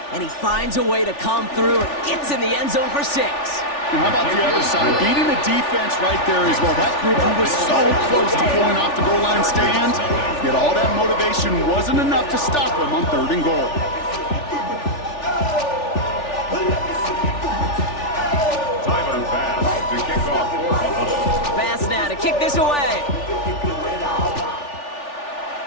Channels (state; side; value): late; right; 3.4 ms